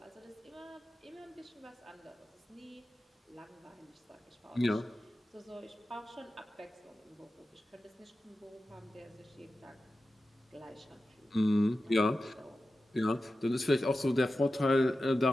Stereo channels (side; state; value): both; normal; correlation 0.93